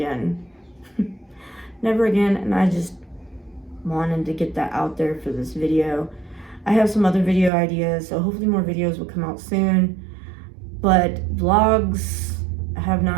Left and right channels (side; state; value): left; drops out; at 7.5 s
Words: Never again, and I just wanted to get that out there for this video. I have some other video ideas, so hopefully more videos will come out soon. But vlogs have